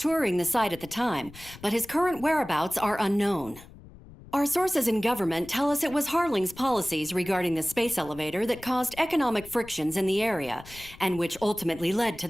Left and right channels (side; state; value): left; noise; rumble, 19 dB below the sound